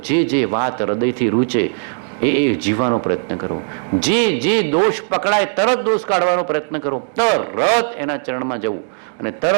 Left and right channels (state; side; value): silent; left; digital silence